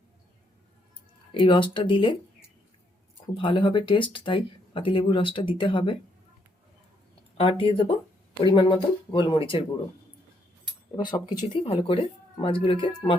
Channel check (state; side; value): normal; both; correlation 0.73